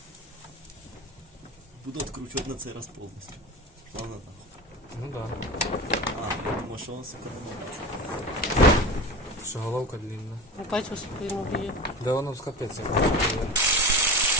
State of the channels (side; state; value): both; normal; correlation 0.29